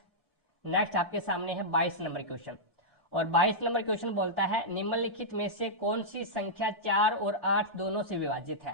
आपके सामने है 22 नंबर क्वेश्चन, और 22 नंबर क्वेश्चन बोलता है निम्नलिखित में से कौन सी संख्या 4 और 8 दोनों से विभाजित है।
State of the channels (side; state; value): both; normal; correlation -0.10